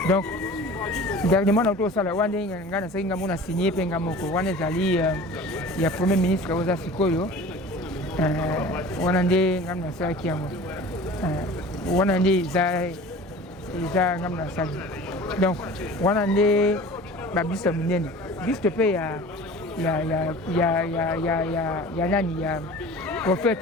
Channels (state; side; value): normal; both; correlation 0.41